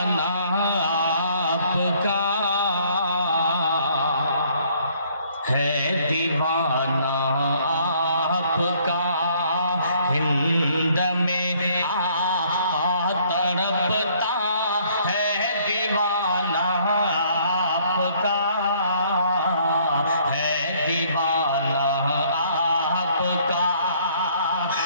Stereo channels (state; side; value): inverted; both; correlation -0.62